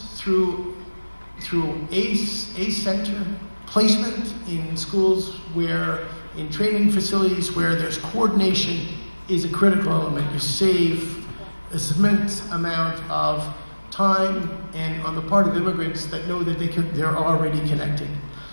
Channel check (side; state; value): both; inverted; correlation -1.00